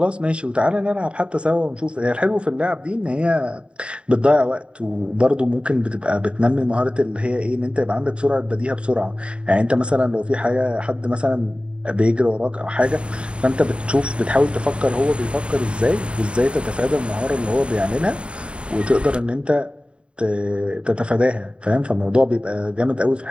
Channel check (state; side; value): late; left; 0.056 ms